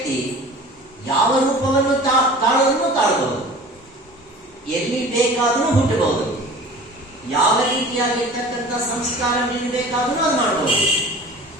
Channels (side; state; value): both; normal; correlation 0.42